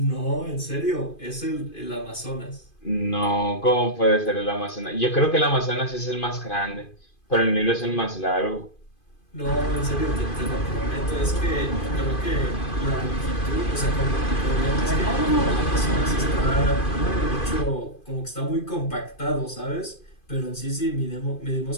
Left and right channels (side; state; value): right; late; 2.5 ms